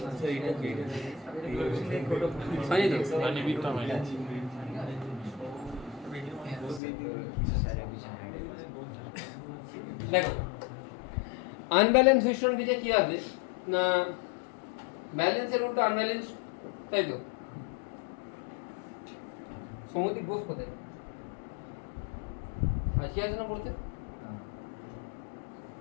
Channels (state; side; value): drops out; right; at 6.8 s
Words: স্যার। এটা কি হয়নি তো? মানে বিটটা হয়নি। দেখো আনব্যালেন্স হুইটস্টোন ব্রিজে কি হবে না, ব্যালেন্সের উল্টো আনব্যালেন্স, তাই তো? সমুদ্রিক বোস কোথায় আজকে আছে না পড়তে?